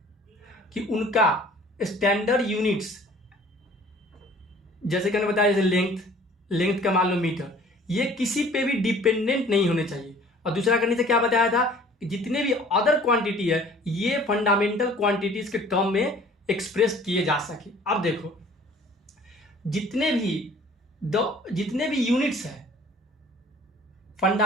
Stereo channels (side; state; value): both; normal; correlation 0.51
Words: कि उनका स्टैंडर्ड यूनिट्स, जैसे कि मैंने बताया, जैसे लेंथ का मान लो मीटर, ये किसी पे भी डिपेंडेंट नहीं होने चाहिए। और दूसरा करने से क्या बताया था, जितने भी अदर क्वांटिटी है ये फंडामेंटल क्वांटिटीज के टर्म में एक्सप्रेस किए जा सके। अब देखो जितने भी यूनिट्स है,